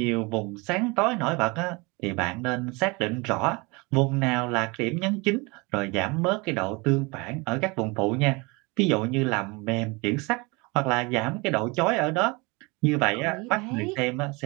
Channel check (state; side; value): quieter; left; 26.8 dB